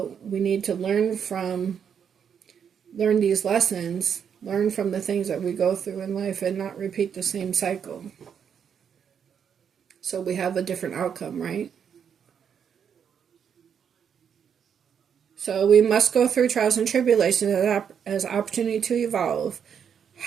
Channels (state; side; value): quieter; left; 7.7 dB